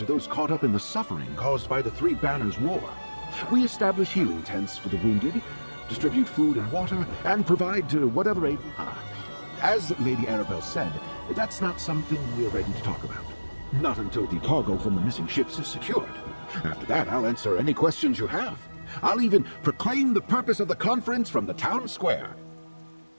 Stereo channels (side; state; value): both; inverted; correlation -1.00